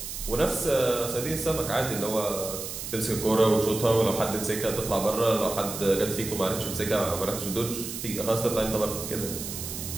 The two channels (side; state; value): right; noise; hiss, 7 dB below the sound